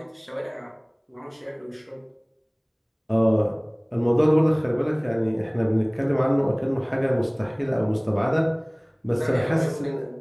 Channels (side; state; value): both; identical; correlation 1.00